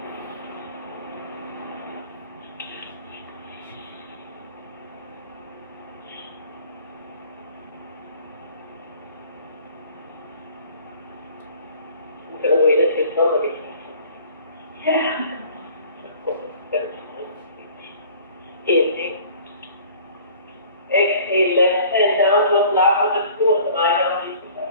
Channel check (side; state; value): both; inverted; correlation -0.49